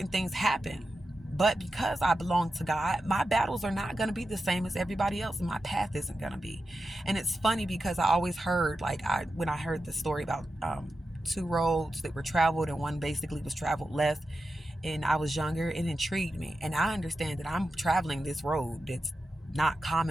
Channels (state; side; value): normal; both; correlation 0.91